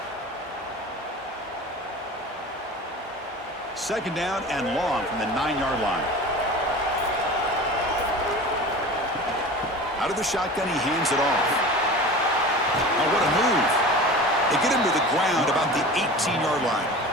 Second down and long from the 9-yard line. Out of the shotgun, he hands it off. Now what a move. They get him to the ground about the 18-yard line.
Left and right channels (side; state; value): both; normal; correlation 0.36